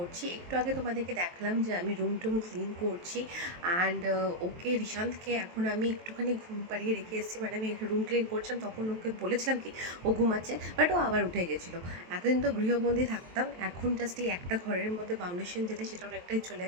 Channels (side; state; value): left; late; 23 ms